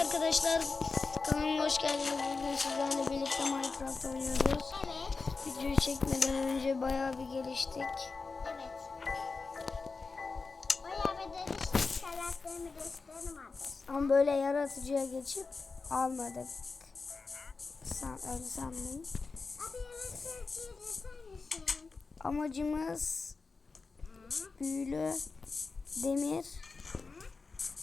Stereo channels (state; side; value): quieter; right; 4.3 dB